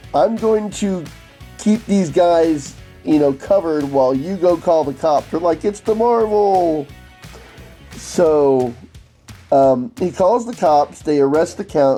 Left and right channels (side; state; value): both; identical; correlation 1.00